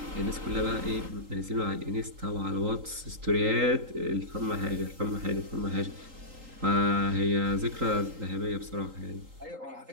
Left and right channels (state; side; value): late; left; 3.8 ms